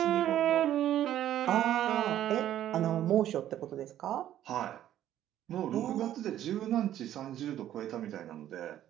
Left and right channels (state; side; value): quieter; left; 11.9 dB